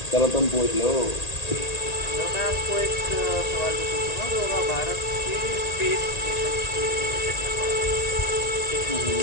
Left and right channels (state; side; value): late; right; 1.8 ms